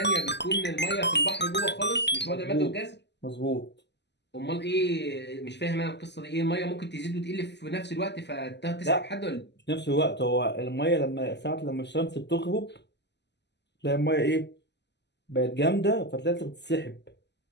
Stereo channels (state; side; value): late; right; 0.50 ms